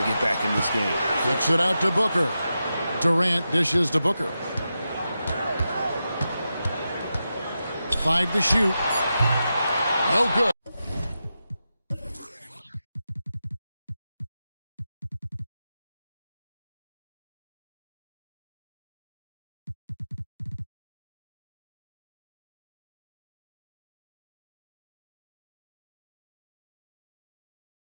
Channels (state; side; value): inverted; both; correlation -0.90